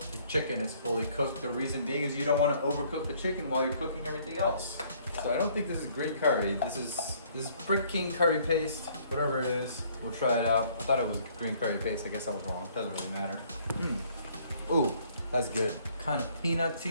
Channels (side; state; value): both; inverted; correlation -0.61